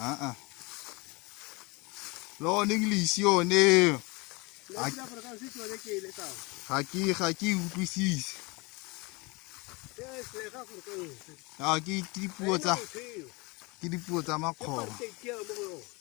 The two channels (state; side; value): quieter; right; 26.3 dB